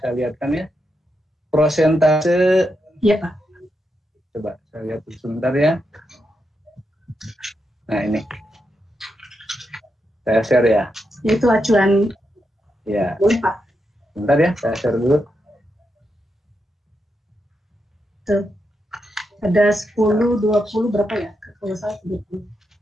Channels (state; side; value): normal; both; correlation 0.84